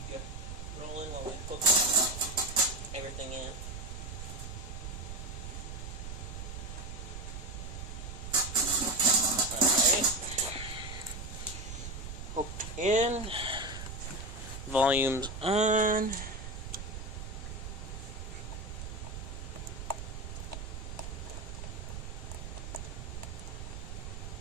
you rolling while we hook everything in. Hooked in, volume's on.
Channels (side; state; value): right; noise; rumble, 8 dB below the sound